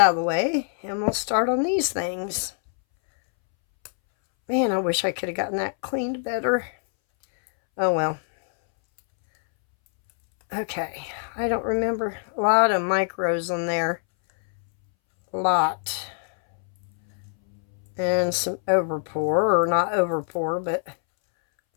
of the way, and we'll start on these things. Man, I wish I could have gotten that cleaned better. Oh well. Okay, I don't remember. A lot of micros in there. A lot. And some overpour, or not overpour, but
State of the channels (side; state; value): right; silent; 63 dB below the other